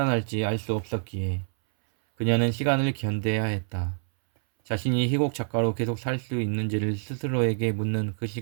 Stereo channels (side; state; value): left; silent; 60 dB below the other